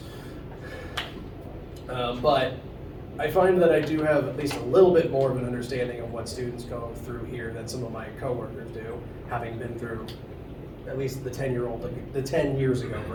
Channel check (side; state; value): both; identical; correlation 1.00